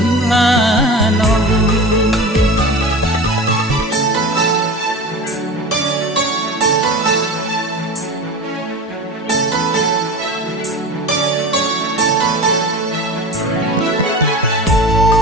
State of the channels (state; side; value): normal; both; correlation 0.32